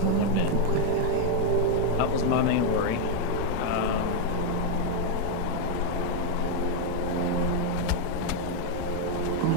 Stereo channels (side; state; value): both; different; correlation 0.00